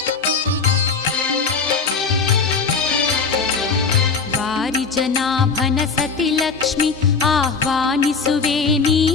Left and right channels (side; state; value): right; quieter; 5.1 dB